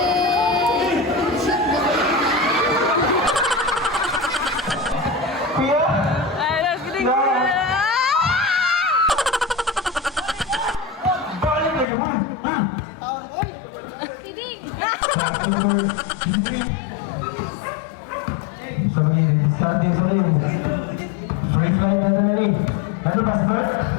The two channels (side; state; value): right; drops out; at 11.9 s